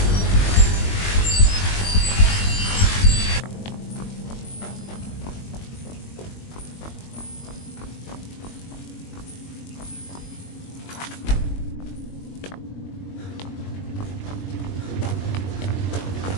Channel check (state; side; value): late; right; 21 ms